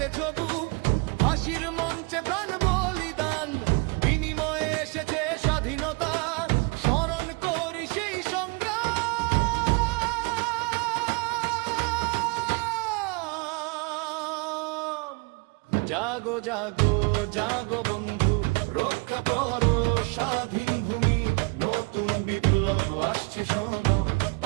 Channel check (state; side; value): quieter; left; 29.4 dB